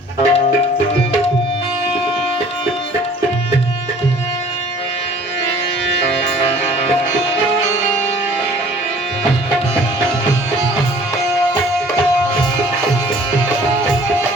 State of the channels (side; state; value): both; normal; correlation 0.52